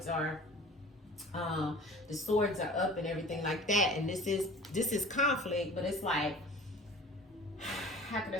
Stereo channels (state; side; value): normal; both; correlation 0.43